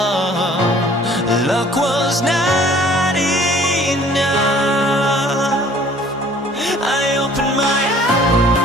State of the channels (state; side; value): normal; both; correlation 0.54